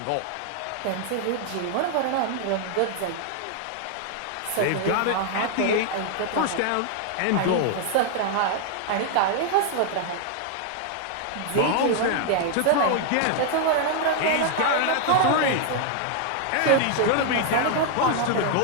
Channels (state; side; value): different; both; correlation 0.00